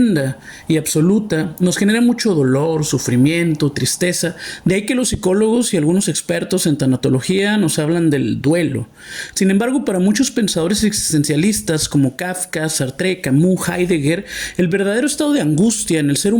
y absoluta nos genera mucho dolor, sufrimiento, tristeza. De ahí que los psicólogos y algunos expertos en tanatología nos hablan del duelo. Sin embargo, para muchos pensadores existencialistas como Kafka, Sartre, Camus, Heidegger, el verdadero estado de angustia en el ser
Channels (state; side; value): identical; both; correlation 1.00